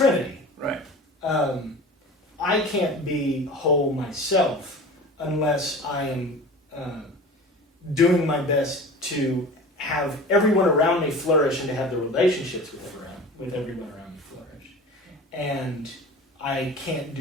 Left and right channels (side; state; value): both; normal; correlation 0.37